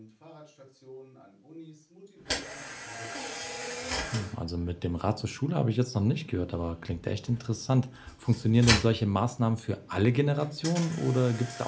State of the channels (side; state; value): both; identical; correlation 1.00